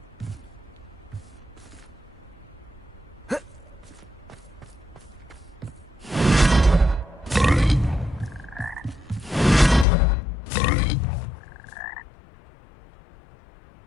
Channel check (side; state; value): right; drops out; at 9.9 s